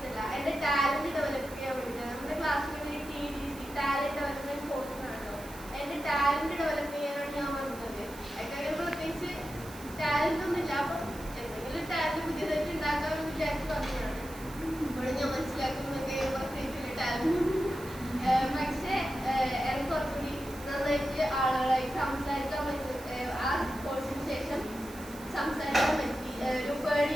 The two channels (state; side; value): noise; right; hiss, 18 dB below the sound